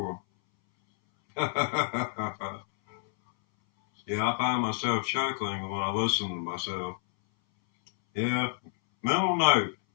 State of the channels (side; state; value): right; silent; 59 dB below the other